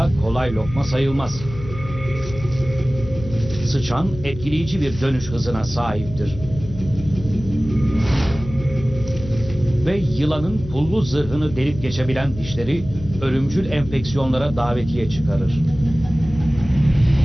kolay lokma sayılmaz. Sıçan etkileyici bir dönüş hızına sahiptir. Ve yılanın pullu zırhını delip geçebilen dişleri ölümcül enfeksiyonlara davetiye çıkarır.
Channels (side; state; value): left; noise; hum, 12 dB below the sound